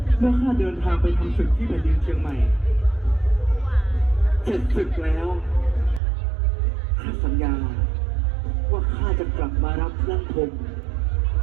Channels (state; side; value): drops out; left; at 6.0 s